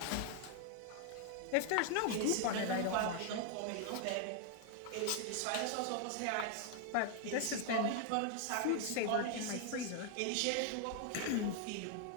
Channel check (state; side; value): different; both; correlation 0.00